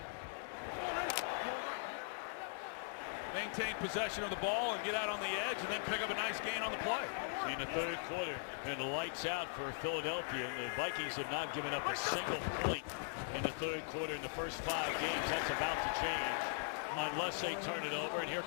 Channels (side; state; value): right; silent; digital silence